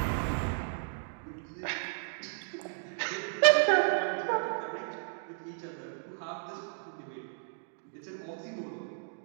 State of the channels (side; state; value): left; silent; digital silence